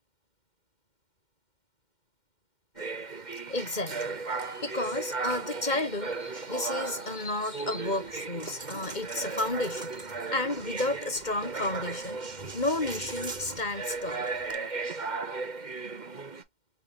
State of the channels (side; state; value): right; late; 2.1 ms